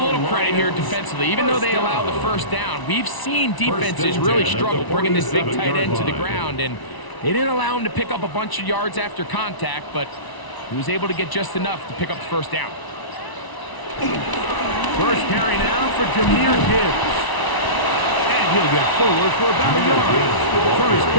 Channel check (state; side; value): late; right; 1.0 ms